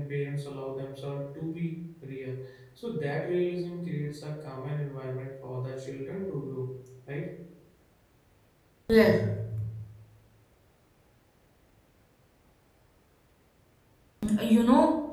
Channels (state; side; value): identical; both; correlation 1.00